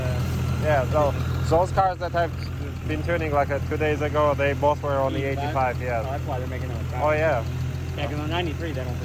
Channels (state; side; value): identical; both; correlation 1.00